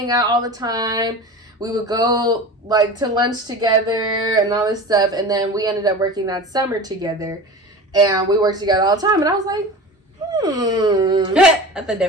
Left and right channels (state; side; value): normal; both; correlation 0.33